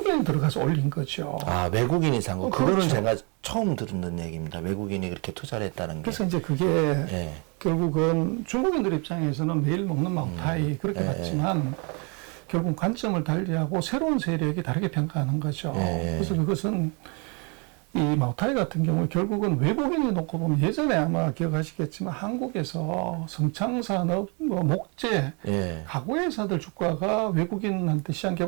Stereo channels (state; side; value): quieter; left; 33.2 dB